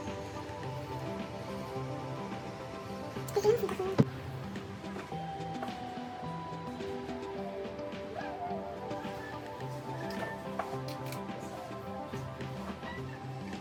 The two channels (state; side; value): identical; both; correlation 1.00